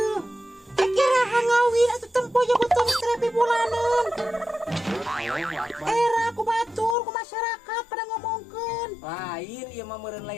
Kira hangawi atuh tempo ya betul terapi bulanan. Era ku batur ku masyarakat pada ngomongkeun. Lain ieu mah meureun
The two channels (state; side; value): drops out; right; at 7.0 s